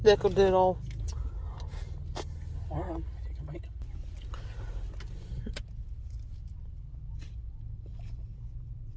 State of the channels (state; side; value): identical; both; correlation 1.00